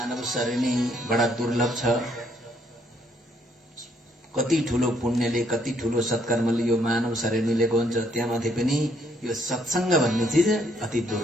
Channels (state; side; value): normal; both; correlation 0.69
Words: शरीर नै बडा दुर्लभ छ। कति ठुलो पुण्यले, कति ठुलो सत्कर्मले यो मानव शरीर मिलेको हुन्छ। त्यहाँमाथि पनि यो सत्संग भन्ने चिज अति